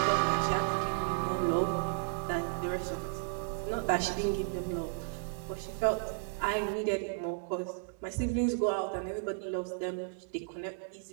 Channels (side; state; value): left; silent; digital silence